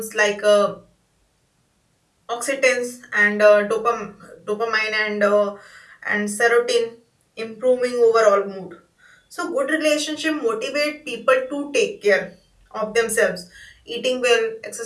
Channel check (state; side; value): identical; both; correlation 1.00